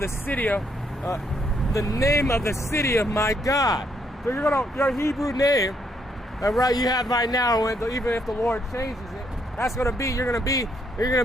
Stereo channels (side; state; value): both; normal; correlation 0.73